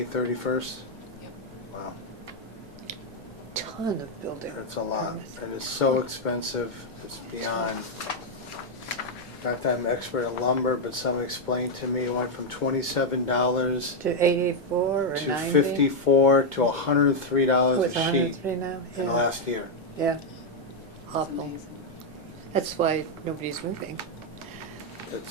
31st. Yep. Wow, ton of building. that's a lot. permits. And it's so expensive, it's beyond. Not that I'm an expert in lumber, but someone explained to me it went from $27 To 84 or to 90? $54 to $103 With a sheet 103 now? in the Yeah. last year. Yeah, It's awful. amazing. That's why nobody's moving.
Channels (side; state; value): left; noise; rumble, 25 dB below the sound